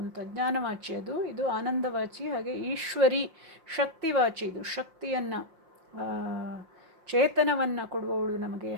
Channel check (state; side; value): late; left; 5.7 ms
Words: ಅಂತ, ಜ್ಞಾನವಾಚಿ ಅದು. ಇದು ಆನಂದವಾಚಿ. ಹಾಗೆ ಈಶ್ವರಿ ಶಕ್ತಿವಾಚಿ, ಇದು ಶಕ್ತಿಯನ್ನು, ಚೇತನವನ್ನು ಕೊಡುವವಳು ನಮಗೆ.